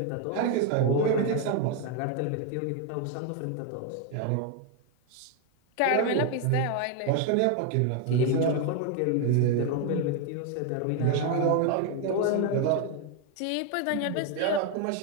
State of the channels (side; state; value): both; different; correlation 0.01